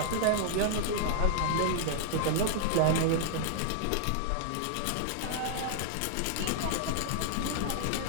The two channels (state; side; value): different; both; correlation 0.00